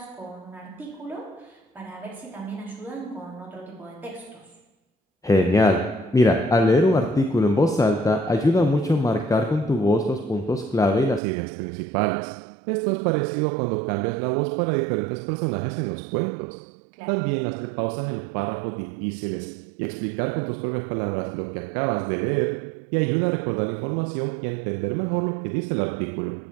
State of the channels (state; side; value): drops out; left; at 11.2 s